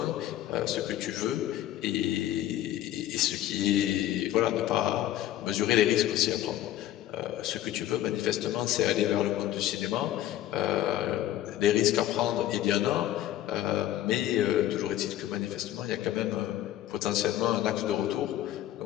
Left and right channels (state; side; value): quieter; right; 13.1 dB